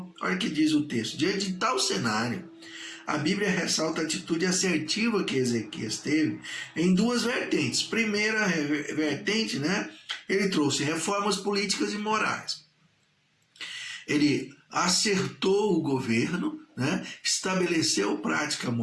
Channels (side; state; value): both; identical; correlation 1.00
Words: Olha o que diz o texto. Diante de tal cenário, a Bíblia ressalta a atitude assertiva que Ezequias teve em duas vertentes. Primeira vertente, né? Ele trouxe reformas políticas e morais. Ele acertou o governo, né? Estabeleceu prática